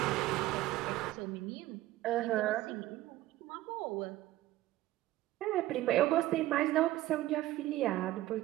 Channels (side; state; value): left; quieter; 16.0 dB